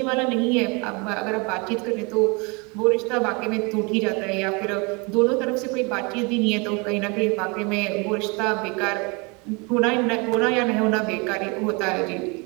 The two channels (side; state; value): left; quieter; 29.6 dB